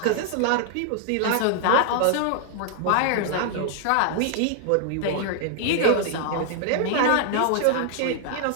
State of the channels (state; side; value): different; both; correlation 0.00